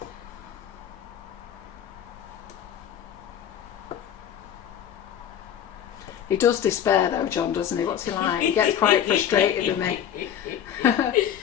He does despair though, John, doesn't he? What's he like? He gets quite frustrated with me.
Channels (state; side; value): quieter; right; 9.7 dB